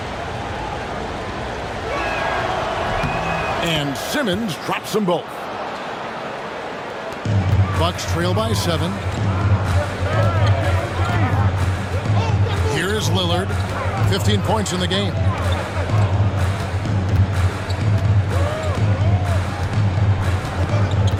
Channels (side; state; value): both; identical; correlation 1.00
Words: And Simmons drops them both. Bucks trail by 7. Here's Lillard, 15 points in the game.